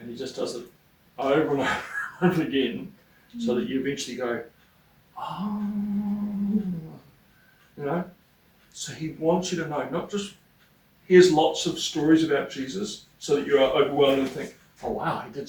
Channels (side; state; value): both; identical; correlation 1.00